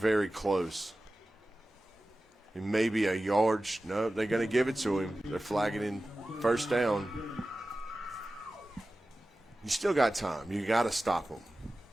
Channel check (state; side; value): normal; both; correlation 0.95